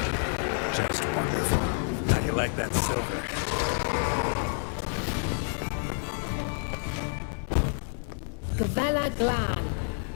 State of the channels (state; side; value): silent; right; 57 dB below the other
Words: Just wonderful. How do you like that silver? Gavella Glan.